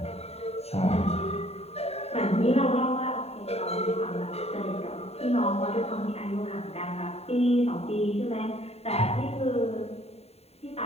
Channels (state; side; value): late; right; 0.30 ms